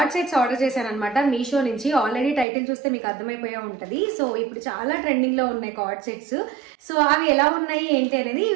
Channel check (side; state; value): left; drops out; at 2.5 s